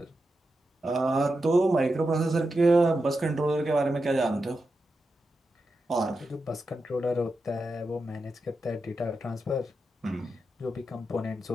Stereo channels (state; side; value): normal; both; correlation 0.89